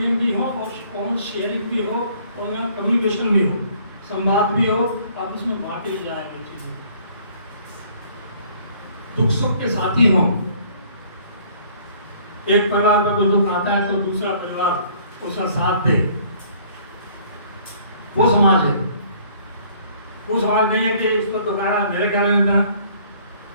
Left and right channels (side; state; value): both; inverted; correlation -0.58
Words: भी हो और कॉमन शेयरिंग भी हो और यहाँ कम्युनिकेशन भी हो, संवाद भी हो, आपस में बांटी जाए वो चीजें, दुख सुख के साथी हों। एक परिवार में कोई दुख आता है तो दूसरा परिवार उसका साथ दे, वो समाज है। वो समाज नहीं है कि इस पर दुख आया मेरे क्या लेने का,